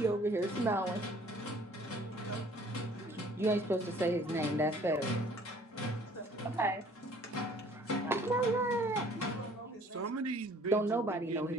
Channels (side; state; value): both; normal; correlation 0.55